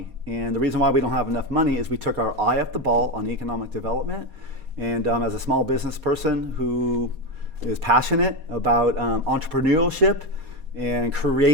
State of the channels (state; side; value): late; left; 4.2 ms